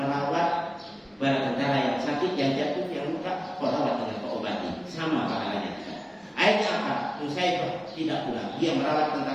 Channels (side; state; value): both; identical; correlation 1.00